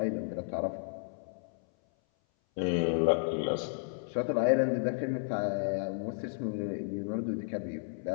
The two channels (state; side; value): silent; right; 56 dB below the other